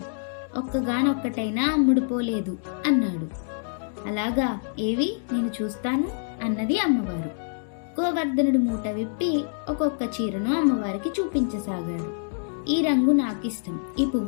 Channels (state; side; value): silent; right; digital silence